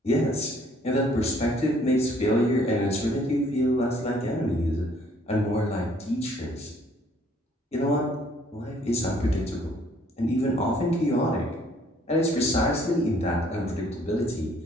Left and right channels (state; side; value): normal; both; correlation 0.62